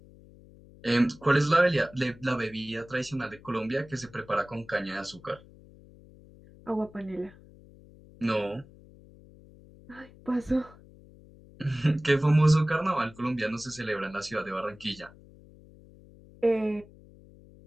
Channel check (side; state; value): left; noise; hum, 23 dB below the sound